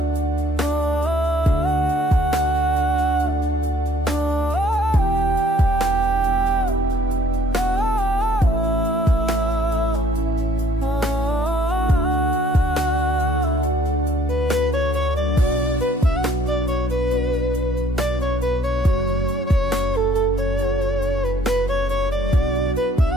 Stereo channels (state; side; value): normal; both; correlation 0.59